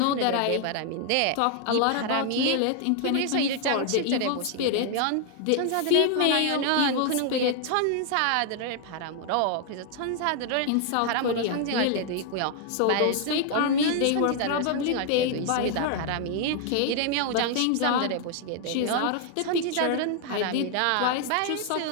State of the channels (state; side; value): different; both; correlation 0.00